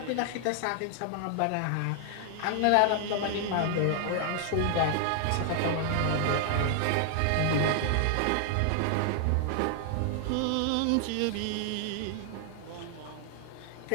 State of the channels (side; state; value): both; different; correlation 0.00